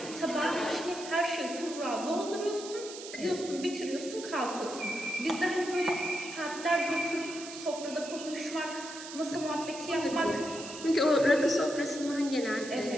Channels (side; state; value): right; noise; hiss, 12 dB below the sound